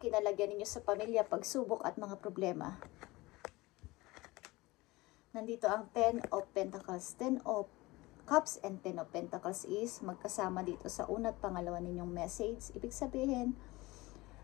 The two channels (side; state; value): right; quieter; 21.0 dB